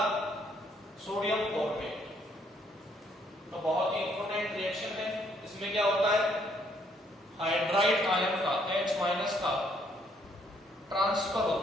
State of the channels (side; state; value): both; normal; correlation 0.68